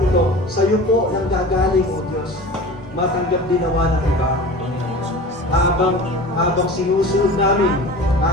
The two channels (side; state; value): both; normal; correlation 0.37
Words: sa iyo po nang gagaling, O Diyos. Matanggap din nawa ng iba, Panginoon. Habang sinusunod namin,